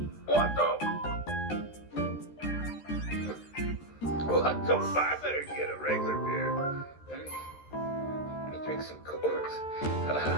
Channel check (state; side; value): late; right; 13 ms